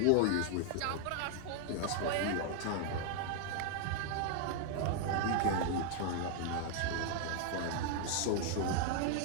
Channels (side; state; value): both; different; correlation 0.00